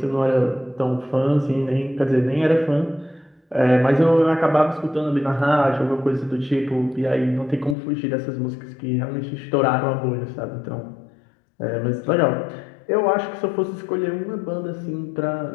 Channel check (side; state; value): right; drops out; at 7.8 s